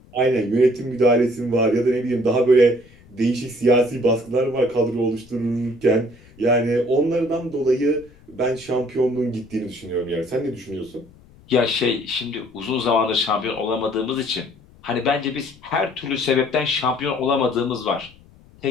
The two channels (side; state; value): left; noise; rumble, 26 dB below the sound